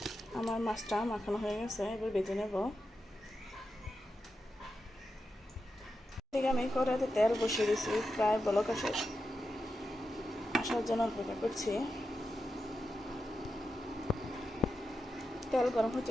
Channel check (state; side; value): normal; both; correlation 0.89